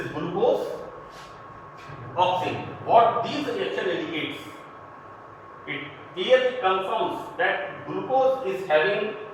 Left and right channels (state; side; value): identical; both; correlation 1.00